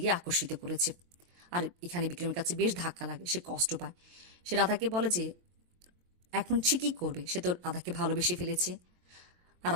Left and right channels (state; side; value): late; left; 23 ms